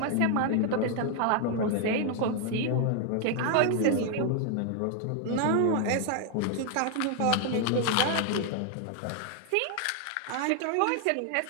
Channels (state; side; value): different; both; correlation 0.00